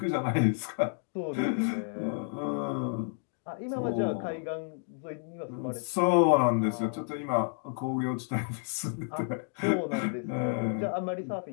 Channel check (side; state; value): right; silent; 57 dB below the other